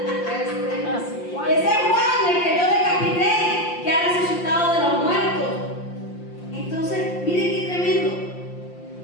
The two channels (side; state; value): right; late; 5.7 ms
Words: Ese es Juan, el que yo decapité, que ha resucitado de los muertos. Entonces, miren qué tremendo.